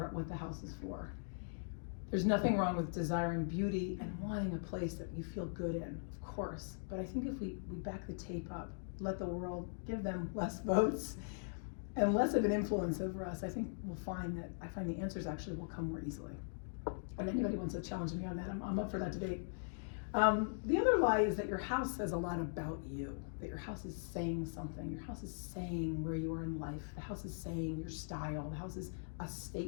about what the house is for. There's nothing wrong with desiring beauty and wanting a place that you feel good in, of course. But I think if we back the tape up, let the world give them less votes and less of an influence over us, I think we'll find the answers actually will come more easily. And anybody wants to challenge me on that, I'm up for that debate. The other lie is that your house says a lot about you, that your house is saying something. Your house is saying where you are in life. The house is saying your style. The house is a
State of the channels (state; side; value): silent; right; digital silence